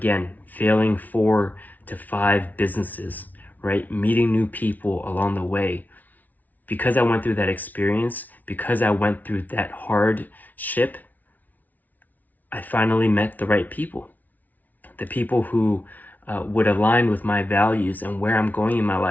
failing 4 to 5 businesses, right? Meeting new people along the way. Because I went through that experience, because I went through that hardship, I finally met the right people. The people who would align with my values and where I'm going in my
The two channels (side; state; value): right; late; 0.078 ms